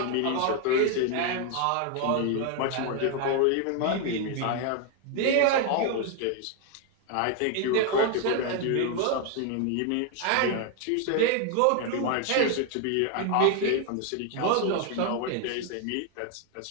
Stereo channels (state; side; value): different; both; correlation 0.01